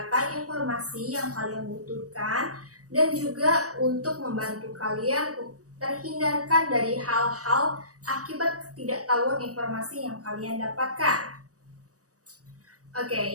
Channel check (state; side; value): late; left; 0.66 ms